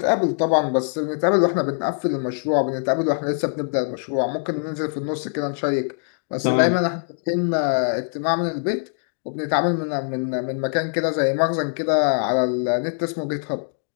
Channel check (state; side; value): silent; right; digital silence